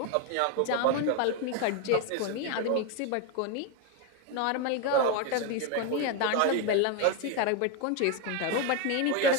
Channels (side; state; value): both; different; correlation 0.02